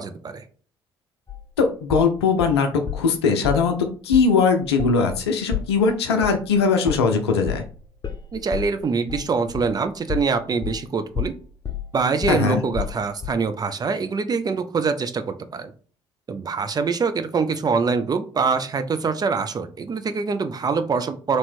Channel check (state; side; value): normal; both; correlation 0.36